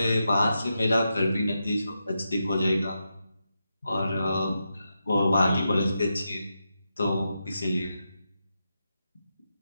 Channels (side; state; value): both; inverted; correlation -0.87